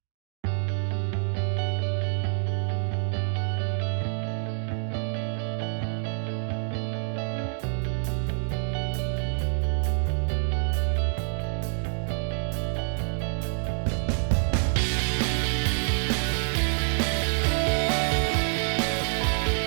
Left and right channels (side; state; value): left; silent; digital silence